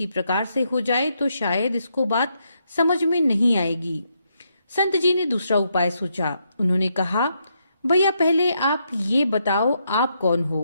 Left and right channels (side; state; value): both; inverted; correlation -0.78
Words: प्रकार से हो जाए तो शायद इसको बात समझ में नहीं आएगी। संत जी ने दूसरा उपाय सोचा। उन्होंने कहा, भैया पहले आप ये बताओ, आप कौन हो